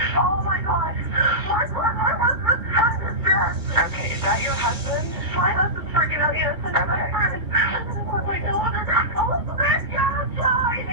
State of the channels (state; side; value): late; left; 2.9 ms